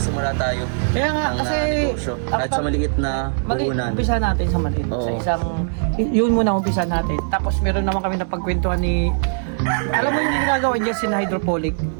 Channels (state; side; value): silent; left; digital silence